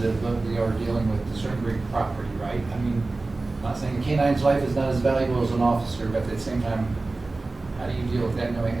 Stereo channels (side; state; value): left; quieter; 3.3 dB